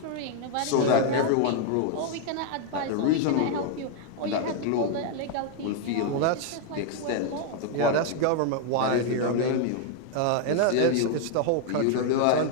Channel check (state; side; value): different; both; correlation 0.00